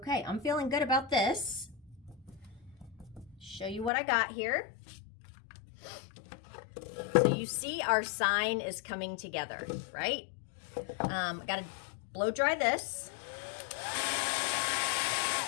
I'm feeling good about this. Show you what I got here. So you see our sign is coming together, right? Got to blow dry this.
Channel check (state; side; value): drops out; right; at 3.9 s